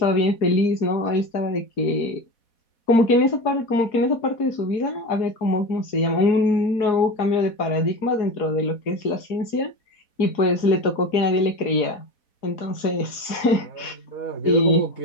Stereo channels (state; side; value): late; right; 4.1 ms